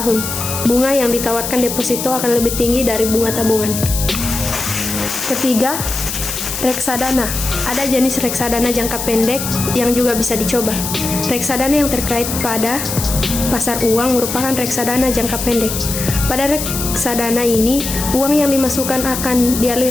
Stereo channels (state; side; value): noise; left; hiss, 5 dB below the sound